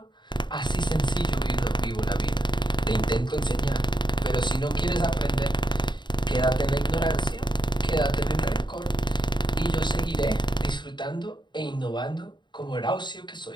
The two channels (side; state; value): right; late; 0.22 ms